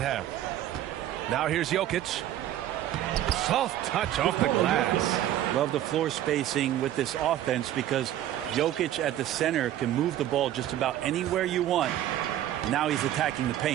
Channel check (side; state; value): left; quieter; 12.5 dB